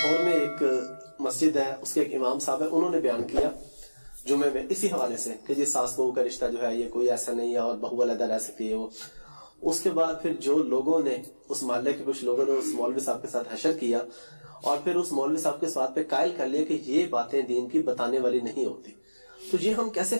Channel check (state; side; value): inverted; both; correlation -1.00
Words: میں ایک مسجد ہے, اس کے ایک امام صاحب ہے, انہوں نے بیان کیا جمعے میں اسی حوالے سے کہ جی ساس بہو کا رشتہ جو ہے یہ کوئی ایسا نہیں ہے اور بہو علیحدہ رہ سکتی ہے. وہ اس کے بعد پھر جو لوگوں نے اس محلے کے کچھ لوگوں نے اس مولوی صاحب کے ساتھ حشر کیا اور پھر اس مولوی صاحب کے اس بات پہ قائل کر لیا کہ یہ باتیں دین کی بتانے والی نہیں ہوتی. تو یہ ہم کیسے